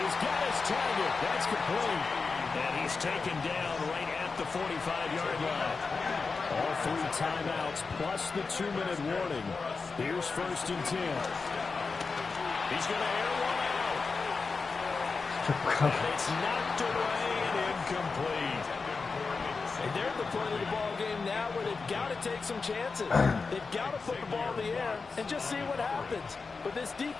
got his target. That's complete. And he's taken down right at the 45-yard line. All 3 timeouts plus the 2-minute warning. Here's 1st and 10. He's going to air one out. And it's knocked away and incomplete. And they're at the point of the ball game now where they've got to take some chances. They've got to put the ball in the air and just see what happens. But this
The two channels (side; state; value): right; quieter; 4.5 dB